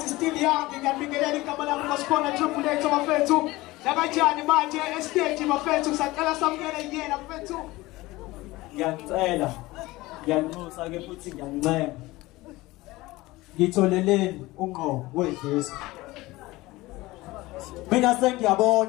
is still young, ngiyabingelela igama lami ngasikhona Triple H bafethu lakanjani manje estage bafethu saqala samukela yena bafethu ngiyacela ngiyanxusa ke futhi ngiyancema ngitholeleni ungqo wedlisa mina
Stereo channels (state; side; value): quieter; right; 19.7 dB